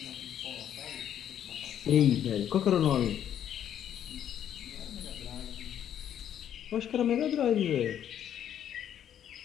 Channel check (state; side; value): quieter; right; 10.1 dB